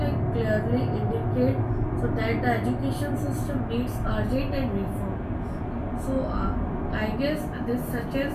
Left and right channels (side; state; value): both; identical; correlation 1.00